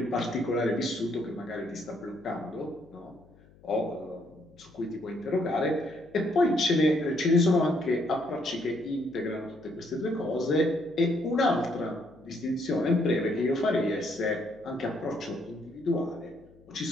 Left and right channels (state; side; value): noise; left; hum, 26 dB below the sound